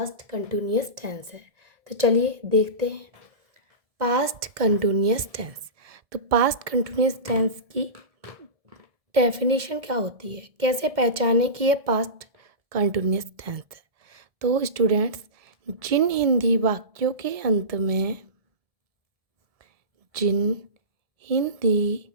कंटिन्यूअस टेंस है। तो चलिए देखते हैं पास्ट कंटिन्यूअस टेंस। तो पास्ट कंटिन्यूअस टेंस की डेफिनेशन क्या होती है, कैसे पहचाने कि ये पास्ट कंटिन्यूअस टेंस है। तो स्टूडेंट्स, जिन हिंदी वाक्यों के अंत में जिन हिंदी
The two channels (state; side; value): late; left; 1.7 ms